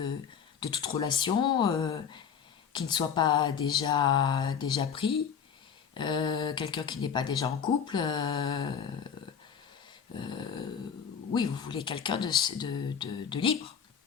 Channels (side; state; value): right; quieter; 7.4 dB